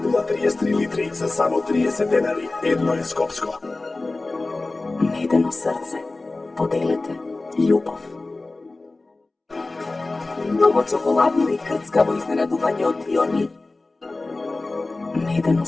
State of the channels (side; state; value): right; quieter; 3.2 dB